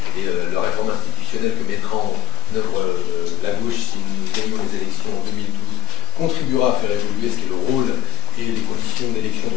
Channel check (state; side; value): quieter; right; 11.8 dB